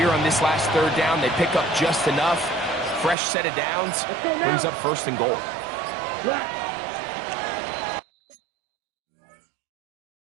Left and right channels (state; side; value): drops out; left; at 3.2 s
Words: on this last 3rd down, they pick up just enough. Fresh set of downs brings up first and goal.